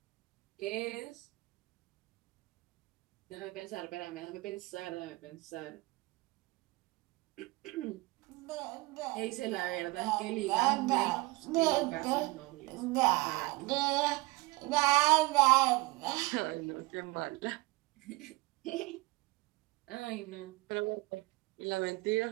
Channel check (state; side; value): quieter; left; 22.3 dB